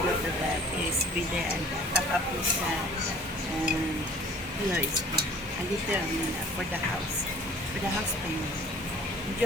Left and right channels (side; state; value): both; normal; correlation 0.50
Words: to the PSB there and top up with POSB. A little for the house payment.